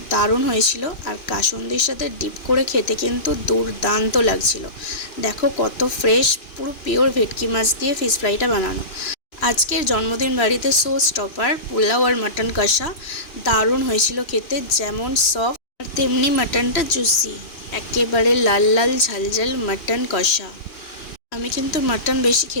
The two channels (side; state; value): right; late; 2.9 ms